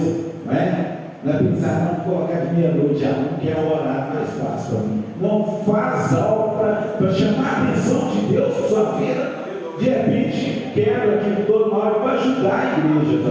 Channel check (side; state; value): both; identical; correlation 1.00